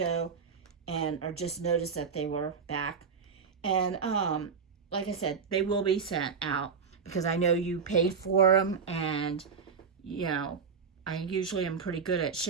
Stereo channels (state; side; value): quieter; left; 5.9 dB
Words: and I just noticed that they were back. And like I said, they will be sent out because I know you paid for them, and you know, I usually am pretty good at